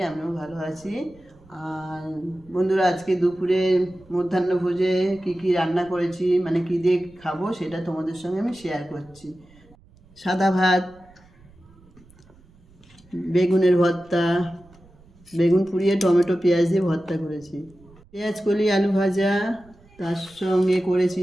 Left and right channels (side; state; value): right; noise; rumble, 27 dB below the sound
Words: আমিও ভালো আছি। আর বন্ধুরা, আজকে দুপুরে মধ্যাহ্নভোজে কি কি রান্না করেছি, মানে কী দিয়ে খাবো, সেটা তোমাদের সঙ্গে আমি শেয়ার করছি। সাদা ভাত, বেগুনের ভর্তা, বেগুন পুড়িয়ে টমেটো পেঁয়াজ দিয়ে ভর্তা করেছি, পেঁয়াজ কলি আলু ভাজা, তার সঙ্গে করেছি